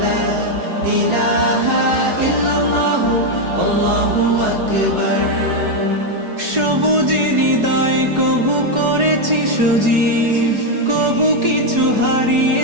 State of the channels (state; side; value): late; left; 4.7 ms